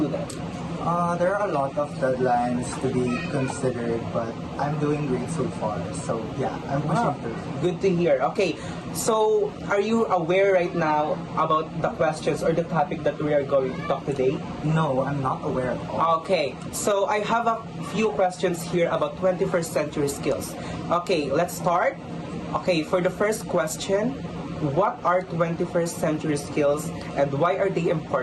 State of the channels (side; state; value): both; identical; correlation 1.00